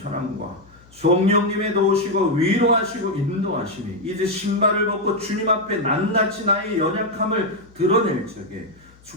성령님의 도우시고 위로하시고 인도하심이 이제 신발을 벗고 주님 앞에 낱낱이 나의 연약함을 드러낼 적에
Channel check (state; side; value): noise; left; hum, 27 dB below the sound